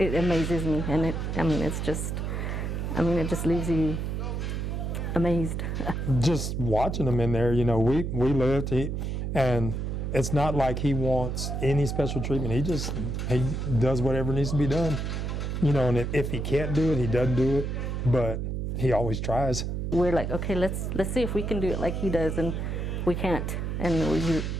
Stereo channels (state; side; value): noise; right; hum, 2 dB below the sound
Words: amazes me, and it just leaves you amazed. Just watching him in there, you know, we lived, and it's not like he wants any special treatment. He does whatever needs to be done, you know, and if he can't do it, he doesn't do it, but he always tries. We're like, okay, let's see if we can do it like he does, and we can't. And